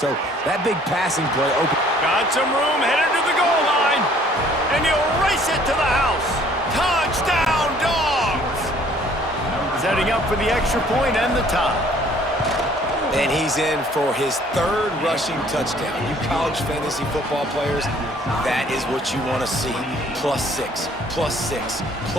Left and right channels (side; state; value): both; normal; correlation 0.58